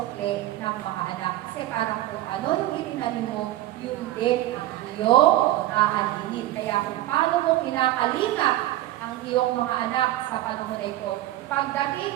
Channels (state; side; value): quieter; left; 15.2 dB